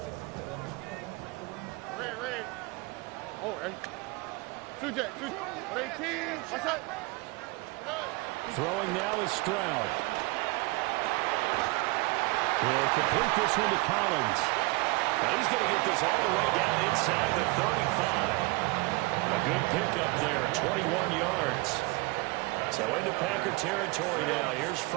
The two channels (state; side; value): quieter; left; 24.5 dB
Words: Oh, hey. 2J. 18. What's up? Throwing now is Stroud. He'll complete this one to Collins. Now he's going to get this all the way down inside the 35. A good pickup there, 21 yards. So into Packer territory now. Here's